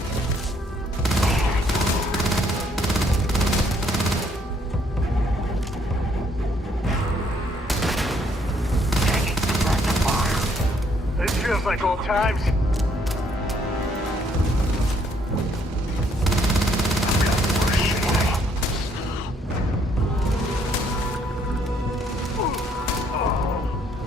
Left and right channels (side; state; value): both; normal; correlation 0.67